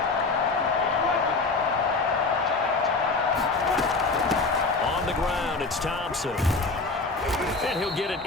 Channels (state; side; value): quieter; right; 3.8 dB